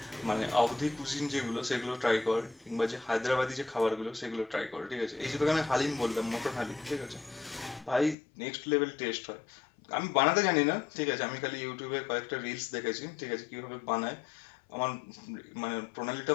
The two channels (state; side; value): drops out; right; at 8.2 s